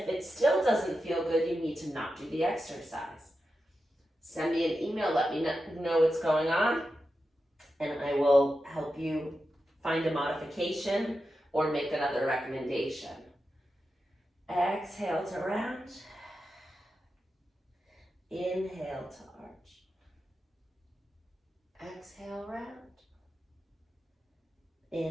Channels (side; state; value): both; normal; correlation 0.90